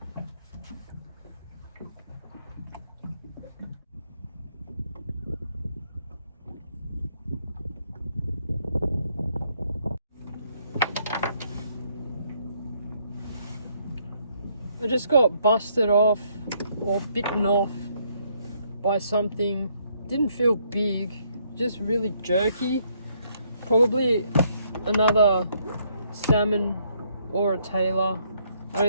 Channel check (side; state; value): both; inverted; correlation -0.70